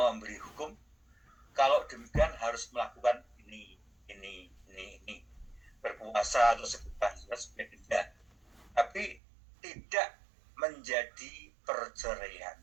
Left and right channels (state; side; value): drops out; left; at 9.2 s